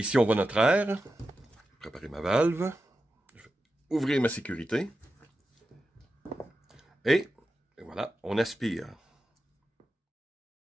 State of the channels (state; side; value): normal; both; correlation 0.91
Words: on voit notre air. Préparer ma valve. Je vais ouvrir ma sécurité. Et voilà, on aspire.